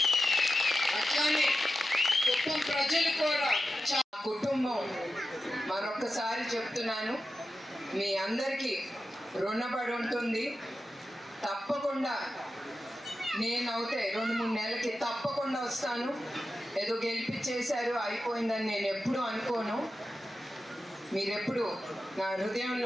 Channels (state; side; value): normal; both; correlation 0.91